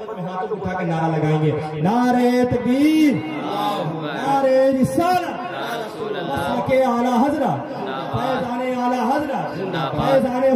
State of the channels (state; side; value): identical; both; correlation 1.00